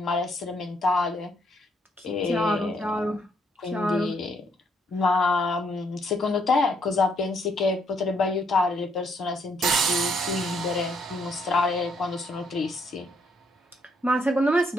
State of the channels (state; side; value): normal; both; correlation 0.72